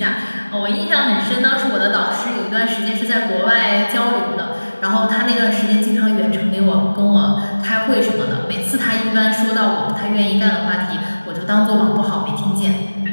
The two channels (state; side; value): inverted; both; correlation -1.00